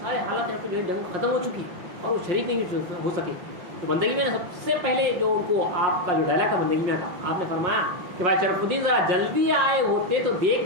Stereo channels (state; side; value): late; left; 5.8 ms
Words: سارے حالات یہاں پہ جو ہے جنگ ختم ہو چکی اور وہ شریک نہیں ہو سکے، تو بندگی میاں نے سب سے پہلے جو ان کو آپ کا جو ڈائلاگ تھا بندگی میاں کا، آپ نے فرمایا کہ بھائی شرف الدین ذرا جلدی آئے ہوتے تو